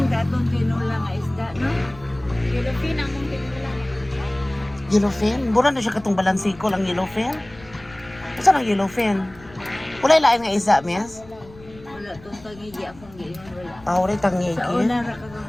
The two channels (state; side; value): noise; left; rumble, 22 dB below the sound